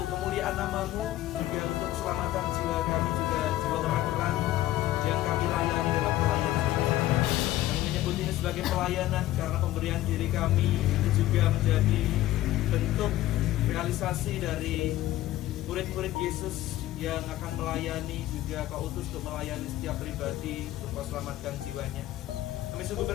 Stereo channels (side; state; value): right; quieter; 15.0 dB